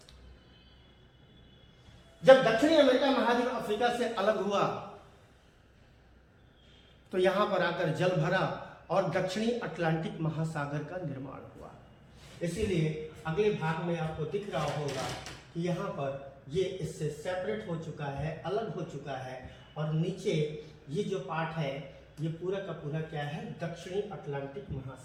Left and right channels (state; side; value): identical; both; correlation 1.00